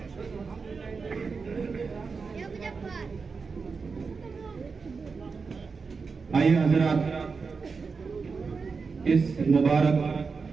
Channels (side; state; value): left; quieter; 4.9 dB